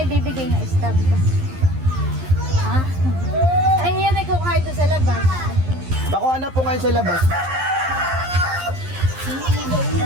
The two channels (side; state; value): left; late; 11 ms